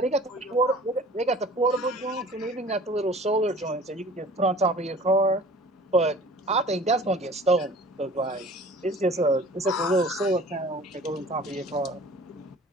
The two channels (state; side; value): normal; both; correlation 0.46